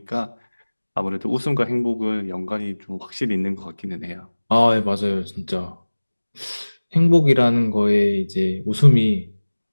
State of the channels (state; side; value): inverted; both; correlation -1.00